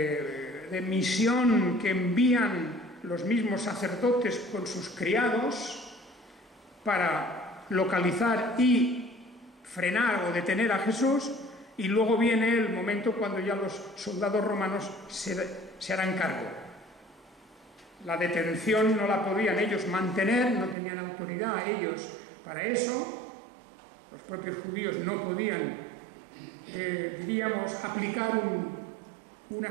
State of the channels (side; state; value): left; drops out; at 20.8 s